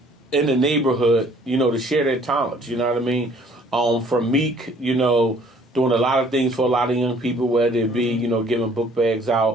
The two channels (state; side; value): normal; both; correlation 0.57